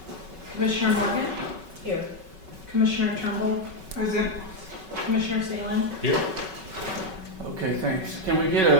Commissioner Morgan. Here. Commissioner Turnbull. Present. Commissioner Salem. Here. Okay, thanks. Can we get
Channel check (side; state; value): left; late; 5.3 ms